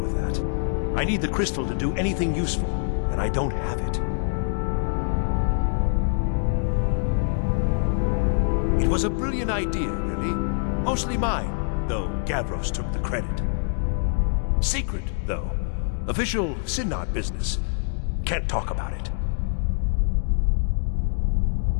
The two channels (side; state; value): right; silent; digital silence